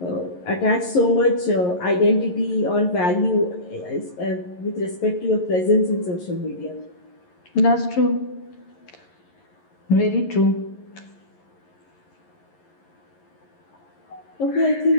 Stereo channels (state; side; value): late; right; 11 ms